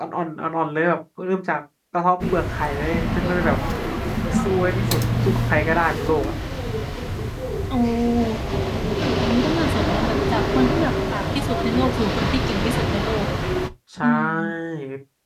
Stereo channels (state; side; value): identical; both; correlation 1.00